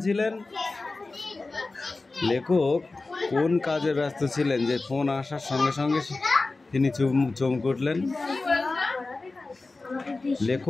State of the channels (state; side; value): quieter; right; 3.5 dB